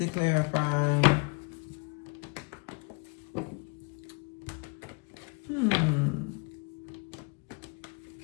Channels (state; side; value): quieter; right; 31.7 dB